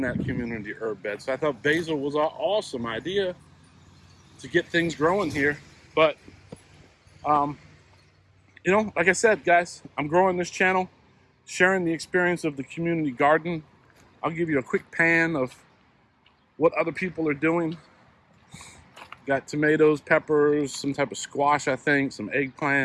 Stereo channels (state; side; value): identical; both; correlation 1.00